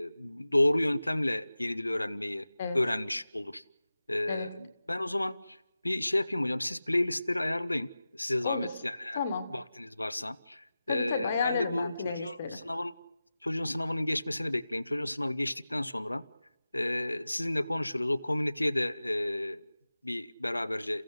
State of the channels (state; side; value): inverted; both; correlation -0.95